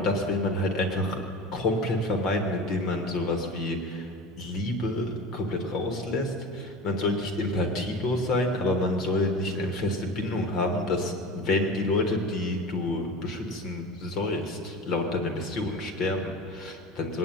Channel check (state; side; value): normal; both; correlation 0.32